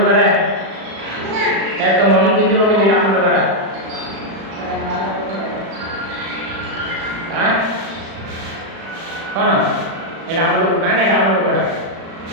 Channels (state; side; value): late; left; 36 ms